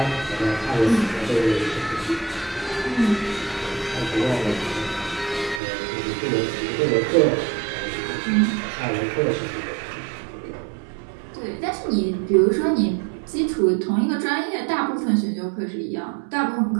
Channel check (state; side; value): drops out; left; at 5.6 s